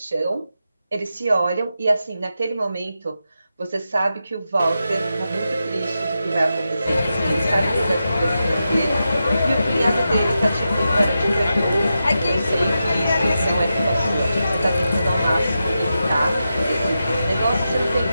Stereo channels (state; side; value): inverted; both; correlation -0.89